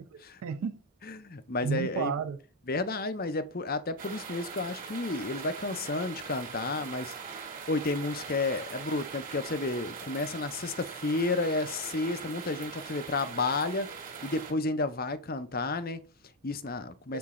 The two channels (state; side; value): normal; both; correlation 0.06